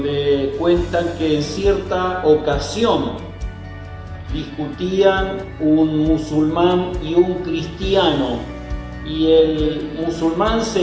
cuentan que en cierta ocasión discutían un musulmán y un cristiano, y el musulmán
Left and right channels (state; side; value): identical; both; correlation 1.00